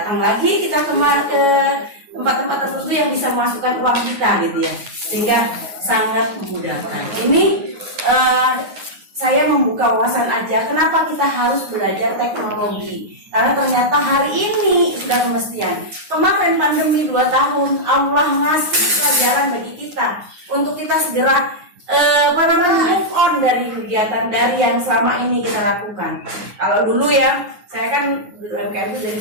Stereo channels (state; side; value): late; left; 9.5 ms